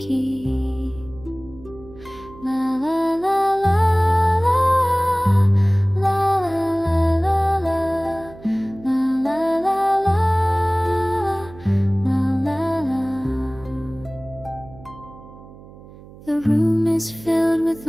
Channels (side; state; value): right; noise; hum, 19 dB below the sound